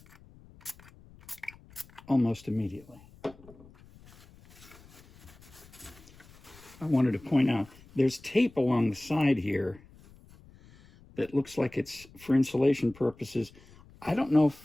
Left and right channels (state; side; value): noise; left; rumble, 24 dB below the sound